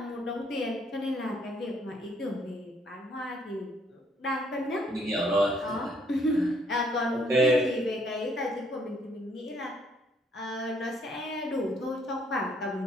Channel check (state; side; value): normal; both; correlation 0.66